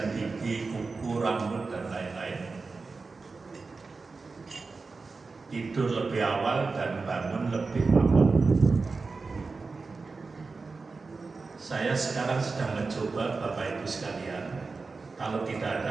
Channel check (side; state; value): left; quieter; 4.2 dB